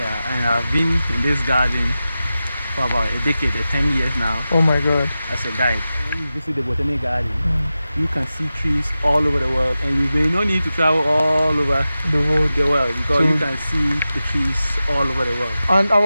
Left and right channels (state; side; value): inverted; both; correlation -0.94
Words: and I've been in this garden for about a decade, 10 years now. Oh my God. As a guide. When you visit the botanic garden, you can see trees all over the world, and you may not need to travel all over the world because you can see the trees all over the world.